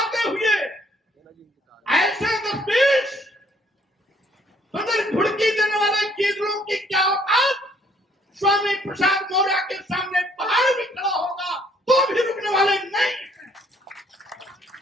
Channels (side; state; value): both; normal; correlation 0.64